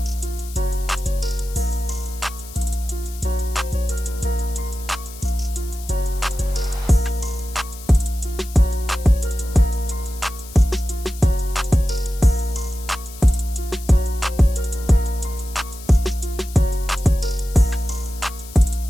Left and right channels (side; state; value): left; noise; hiss, 17 dB below the sound